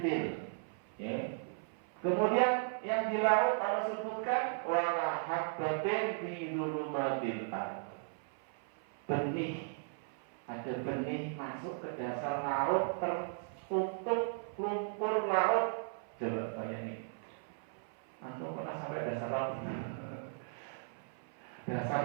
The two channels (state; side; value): silent; left; 53 dB below the other